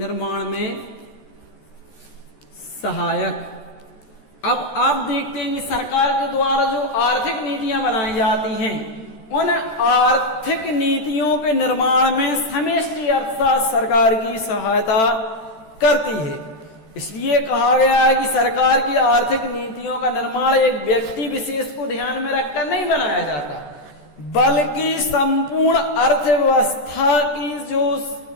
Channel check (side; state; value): right; late; 14 ms